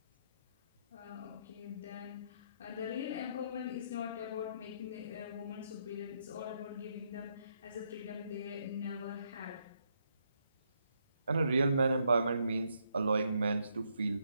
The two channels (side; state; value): both; inverted; correlation -0.76